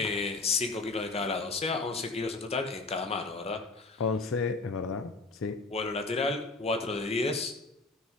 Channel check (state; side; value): quieter; right; 3.5 dB